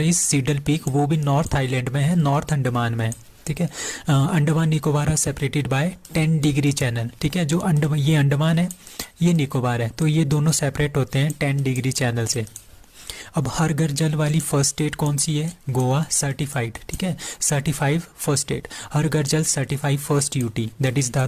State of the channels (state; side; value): identical; both; correlation 1.00